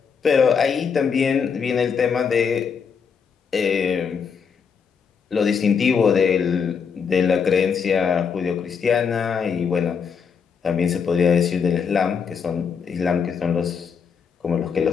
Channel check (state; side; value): quieter; right; 6.4 dB